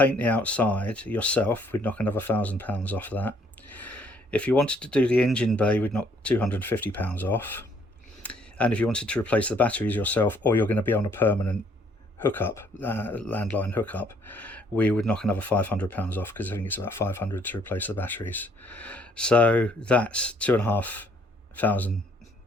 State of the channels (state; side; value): normal; both; correlation 0.64